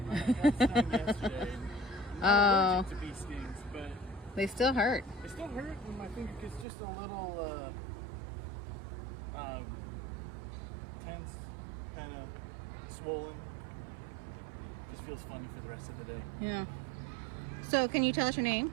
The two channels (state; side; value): drops out; left; at 6.7 s